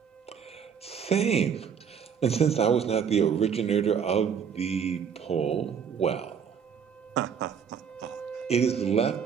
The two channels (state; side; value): quieter; left; 7.2 dB